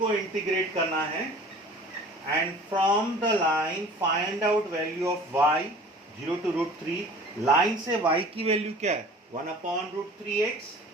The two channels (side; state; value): both; normal; correlation 0.45